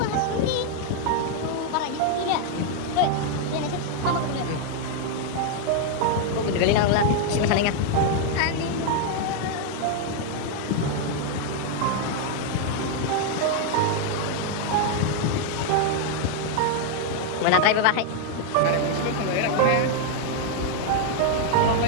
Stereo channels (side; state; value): both; different; correlation 0.00